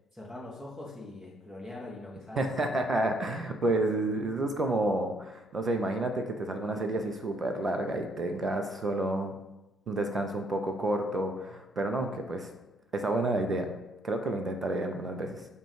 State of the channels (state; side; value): normal; both; correlation 0.68